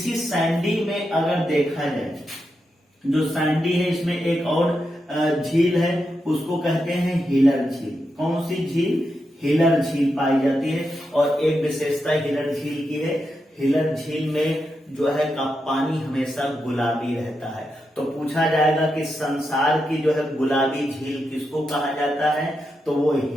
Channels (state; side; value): normal; both; correlation 0.86